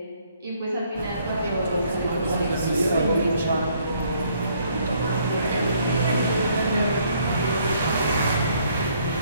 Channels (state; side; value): inverted; both; correlation -0.66